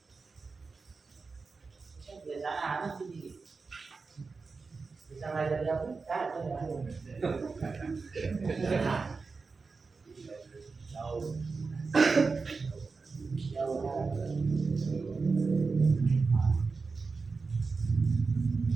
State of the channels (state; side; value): quieter; left; 4.4 dB